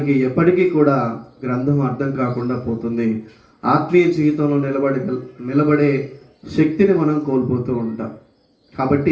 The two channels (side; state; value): both; identical; correlation 1.00